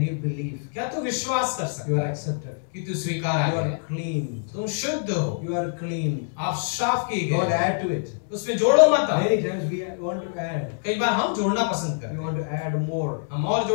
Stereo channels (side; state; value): right; silent; 62 dB below the other